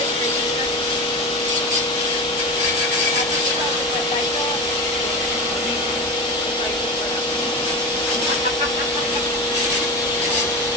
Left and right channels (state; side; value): normal; both; correlation 0.25